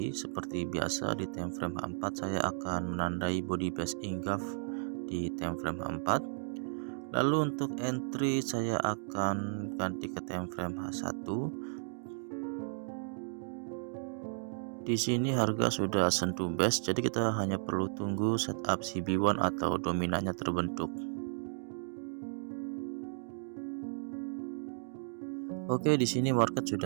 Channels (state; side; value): silent; left; digital silence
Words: Seperti biasa di time frame H4 saya akan menandai body base Ingaf di time frame H4. Lalu untuk entry saya akan ganti ke time frame H1. Di sini harga sudah sentuh base, jadi kita hanya perlu tunggu setup CB1 atau dominannya terbentuk. Oke, di sini market